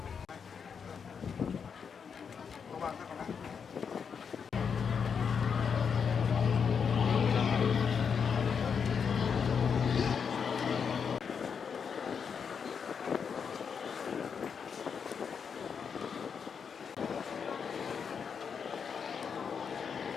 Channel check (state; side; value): quieter; right; 6.5 dB